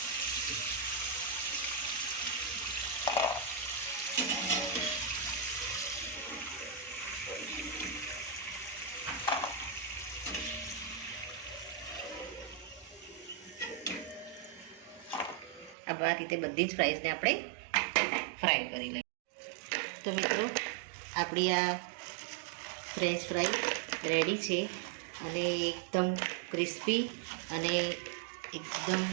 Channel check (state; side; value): drops out; left; at 15.8 s